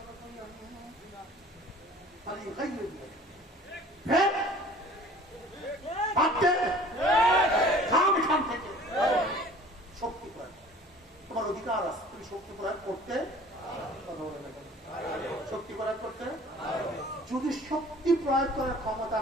শক্তি প্রয়োগ, তোমার অধিকার আছে, তুমি শক্তি প্রয়োগ করতে, শক্তি প্রয়োগ করতে। যদি শক্তি প্রয়োগ করার ক্ষমতা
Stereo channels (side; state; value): both; normal; correlation 0.48